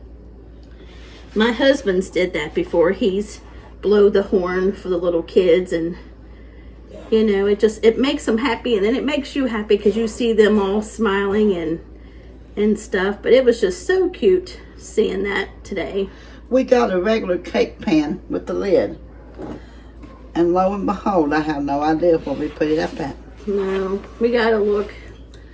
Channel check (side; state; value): both; identical; correlation 1.00